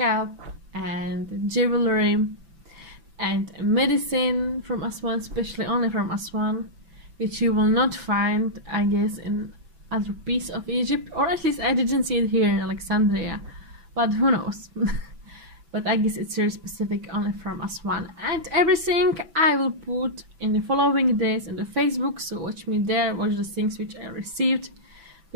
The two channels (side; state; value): left; late; 6.0 ms